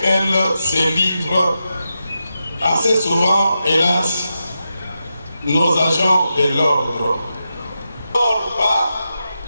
se livrent assez souvent, hélas, nos agents de l'ordre.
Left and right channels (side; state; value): both; inverted; correlation -0.89